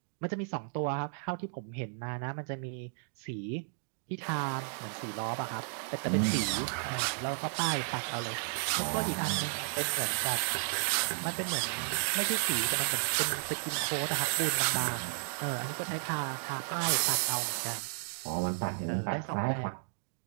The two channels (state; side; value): silent; left; digital silence